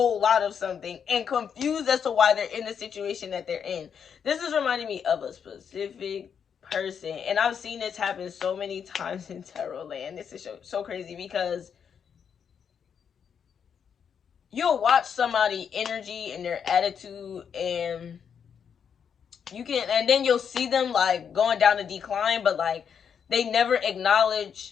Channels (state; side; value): quieter; right; 7.4 dB